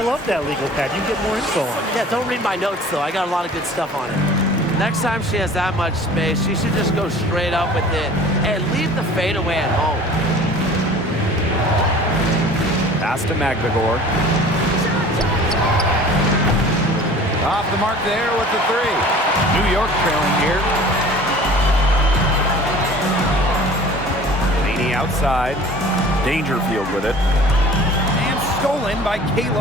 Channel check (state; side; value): normal; both; correlation 0.45